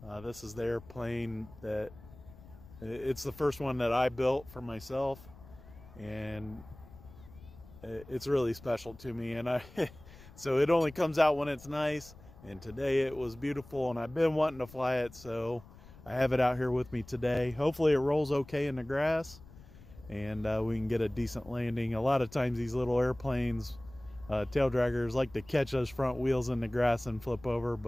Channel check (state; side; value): noise; left; rumble, 20 dB below the sound